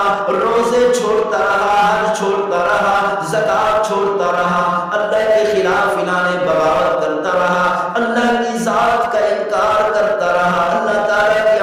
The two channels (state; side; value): identical; both; correlation 1.00